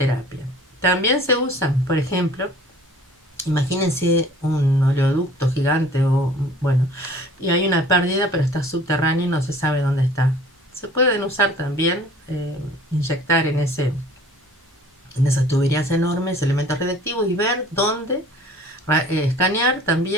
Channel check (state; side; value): normal; both; correlation 0.49